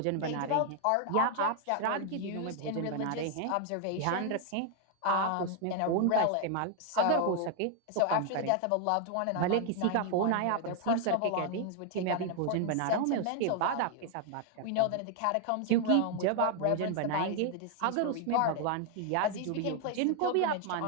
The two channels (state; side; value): different; both; correlation 0.00